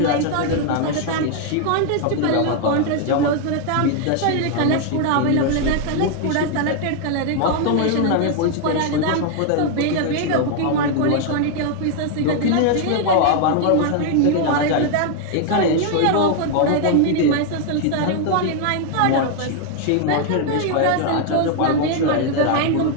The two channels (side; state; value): both; different; correlation 0.00